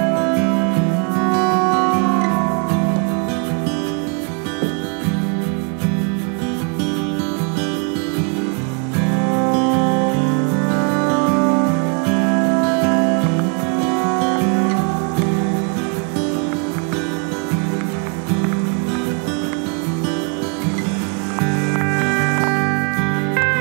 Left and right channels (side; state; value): left; quieter; 36.3 dB